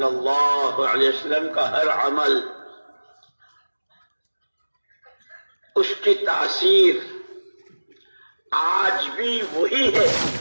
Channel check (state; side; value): inverted; both; correlation -1.00